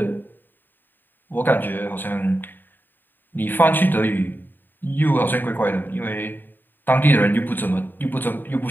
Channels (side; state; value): right; late; 0.092 ms